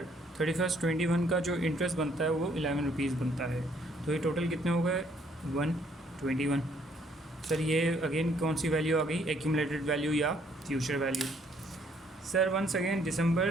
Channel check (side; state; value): both; normal; correlation 0.66